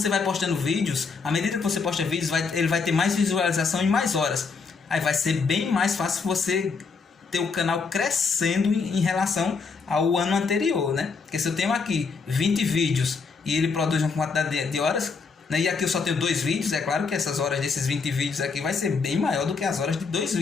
vai postando vídeos, à medida que você posta vídeos, ele vai ter mais visualização e mais horas. Aí vai ser bem mais fácil você ter o canal crescendo em relação ao ano anterior, né? Porque se eu tenho aqui 20 vídeos e ele produz uma quantidade de horas, né? E aqui eu só tenho 2 vídeos, é claro que essas horas desses 20 vídeos aqui vai ser bem maior do que as horas de 2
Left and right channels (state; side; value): quieter; right; 4.9 dB